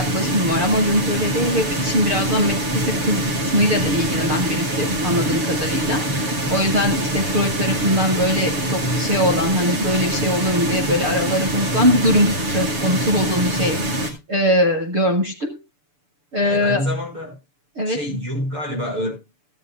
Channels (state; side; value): late; left; 6.9 ms